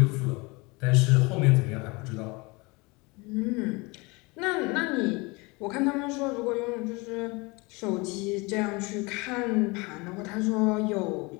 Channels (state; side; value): quieter; right; 26.2 dB